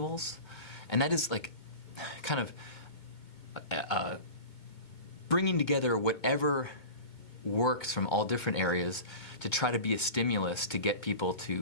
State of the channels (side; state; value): right; late; 2.2 ms